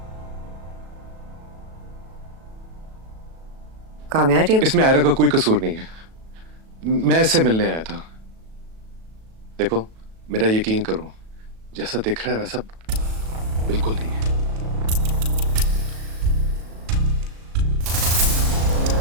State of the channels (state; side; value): late; left; 37 ms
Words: कामयार, ये इसमें आयरा का कोई कसूर नहीं है। मैं इससे मिलने आया था। देखो, मेरा यकीन करो, जैसा दिख रहा है वैसा बिल्कुल नहीं है।